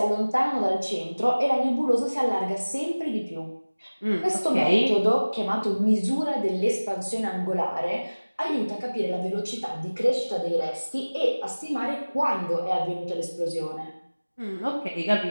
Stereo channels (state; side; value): inverted; both; correlation -1.00